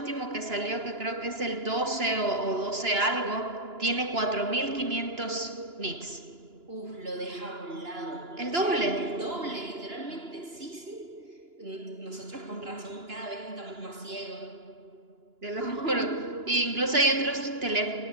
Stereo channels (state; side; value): late; left; 2.9 ms